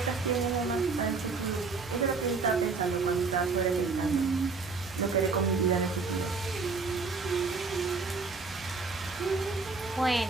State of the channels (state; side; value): quieter; left; 4.4 dB